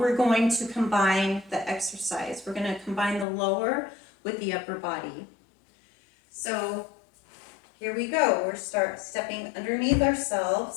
going to combine the exercise. We're going to combine the lower with the upper body. So here we go. We're stepping underneath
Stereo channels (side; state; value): right; drops out; at 3.2 s